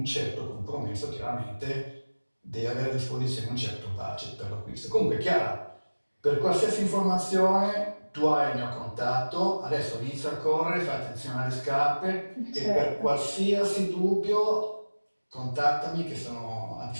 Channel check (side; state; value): both; inverted; correlation -1.00